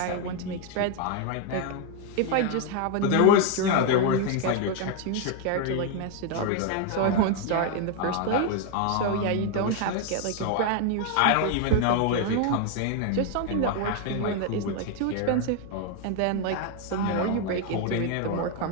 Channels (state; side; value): different; both; correlation 0.01